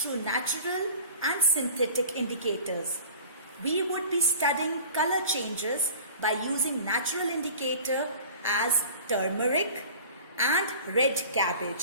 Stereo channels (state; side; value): inverted; both; correlation -0.42